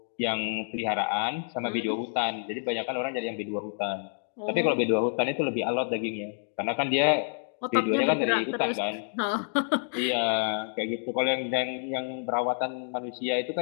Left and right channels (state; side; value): silent; right; digital silence